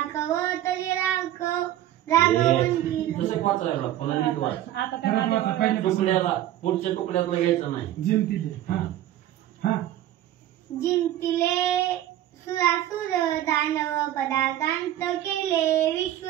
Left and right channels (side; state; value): left; quieter; 12.9 dB